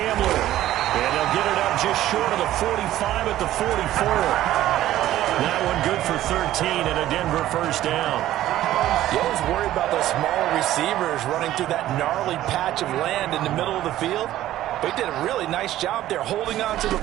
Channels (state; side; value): quieter; left; 13.8 dB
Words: And they'll get it up just short of the 45 at the 44. That one good for 13 and a Denver first down. You always worry about those smaller receivers running through that gnarly patch of land in the middle of the field. But he did a really nice job there holding on to the